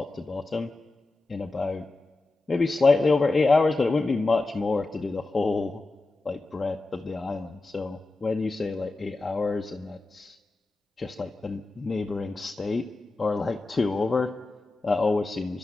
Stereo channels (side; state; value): right; quieter; 3.2 dB